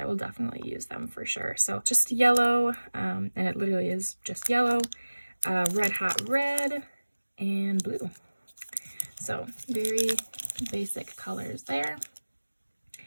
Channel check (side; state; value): both; inverted; correlation -1.00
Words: will definitely use them for sure. So just yellow, and it literally is just yellow, red hot red, and blue. So very basic colors there.